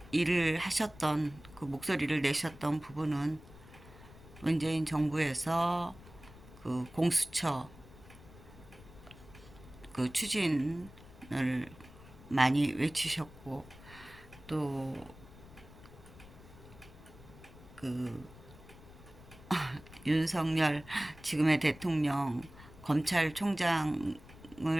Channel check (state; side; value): noise; left; rumble, 19 dB below the sound